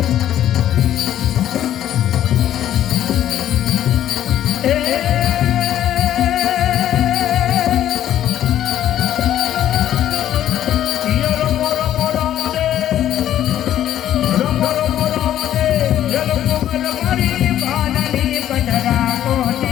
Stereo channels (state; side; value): quieter; right; 11.6 dB